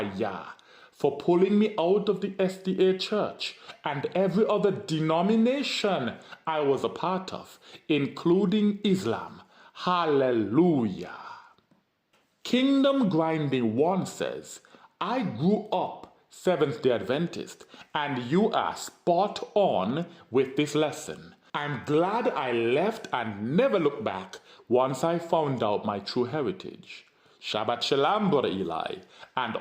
Yah for pulling me out of the SDA Church and every other denomination I was a part of, including Islam. Hallelujah. Kingdom Grinding 1 says, I grew up Seventh-day Adventist, and you are spot on with this lesson. I'm glad I left and never looked back once I found out my true heritage. Shabbat Shalom, Brother Eli, and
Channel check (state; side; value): identical; both; correlation 1.00